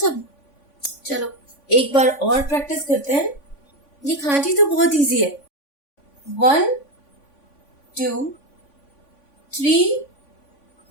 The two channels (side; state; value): right; late; 3.5 ms